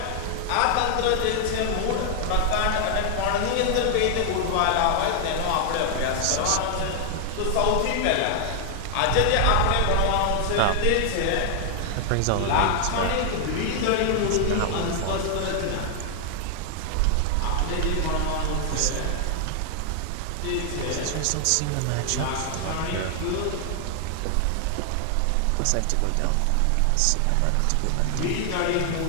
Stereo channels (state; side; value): different; both; correlation 0.00